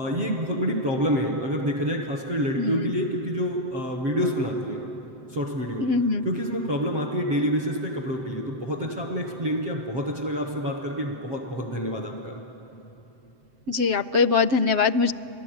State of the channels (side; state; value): left; late; 7.7 ms